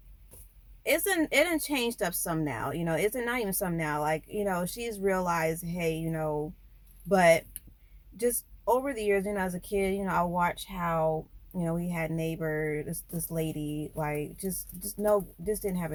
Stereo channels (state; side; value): identical; both; correlation 1.00